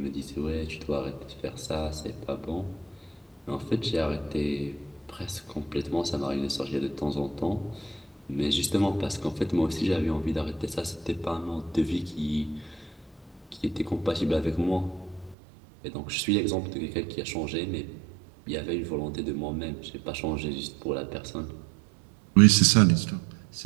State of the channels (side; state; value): left; drops out; at 15.4 s